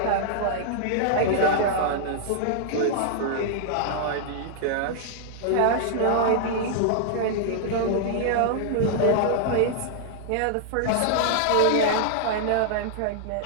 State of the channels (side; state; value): both; different; correlation -0.01